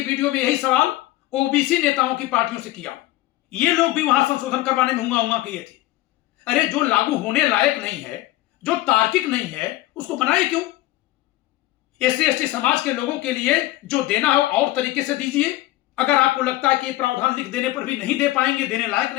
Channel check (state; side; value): quieter; right; 16.9 dB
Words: वीडियो में यही सवाल ओबीसी नेताओं की पार्टियों से किया हूं। ये लोग भी वहां संशोधन करवाने में हुआ किए थे। अरे जो लागू होने लायक नहीं है, जो तार्किक नहीं है, उसको बनाए क्यों? एससी एसटी समाज के लोगों के लिए जो देना है और तरीके से दीजिए। अगर आपको लगता है कि प्रावधान लिख देने पर भी नहीं दे पाएंगे, देने लायक